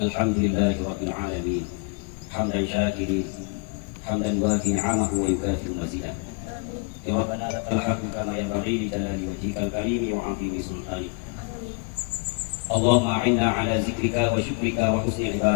الحمد لله رب العالمين حمدا شاكرين حمدا يوافي نعمه ويكافئ مزيدا. يا ربنا لك الحمد كما ينبغي لجلال وجهك الكريم وعظيم سلطانك. اللهم أعنا على ذكرك وشكرك وحسن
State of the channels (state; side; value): quieter; right; 35.4 dB